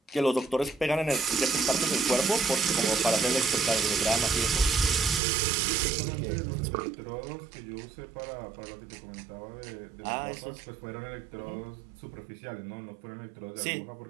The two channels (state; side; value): drops out; left; at 5.2 s